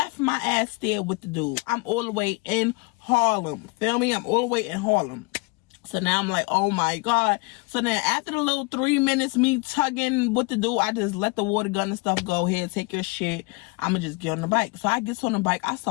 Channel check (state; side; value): quieter; right; 27.3 dB